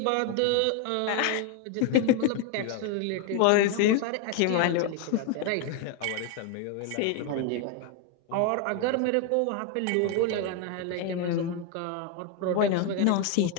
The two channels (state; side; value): different; both; correlation 0.01